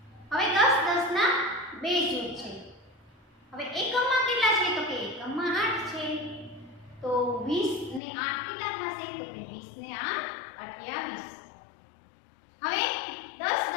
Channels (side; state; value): right; drops out; at 8.0 s